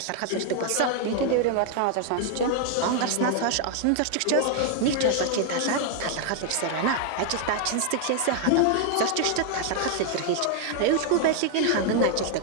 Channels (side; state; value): both; different; correlation 0.00